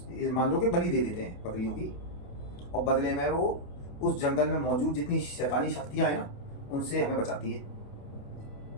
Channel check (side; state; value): right; late; 28 ms